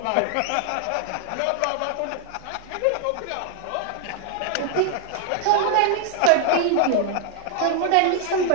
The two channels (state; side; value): different; both; correlation 0.00